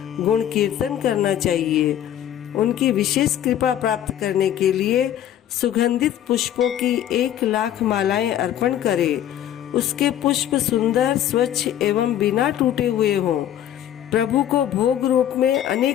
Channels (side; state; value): right; quieter; 11.0 dB